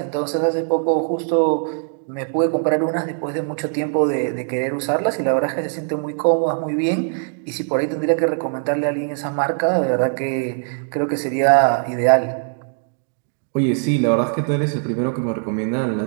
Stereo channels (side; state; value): left; silent; digital silence